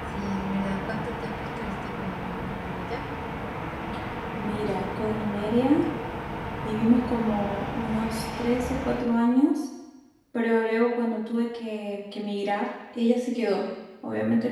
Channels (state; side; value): identical; both; correlation 1.00